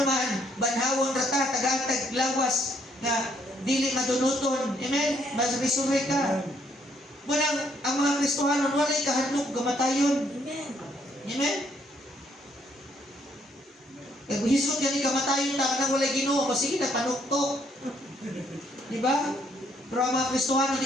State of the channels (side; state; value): both; normal; correlation 0.69